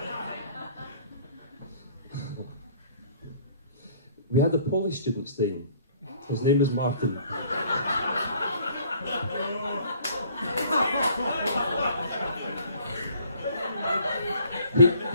We had a Polish student staying. His name was Martin.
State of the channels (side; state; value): both; inverted; correlation -0.56